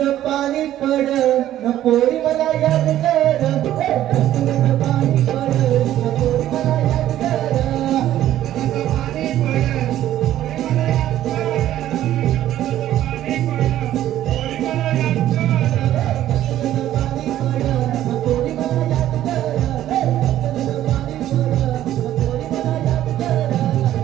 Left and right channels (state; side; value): quieter; left; 12.7 dB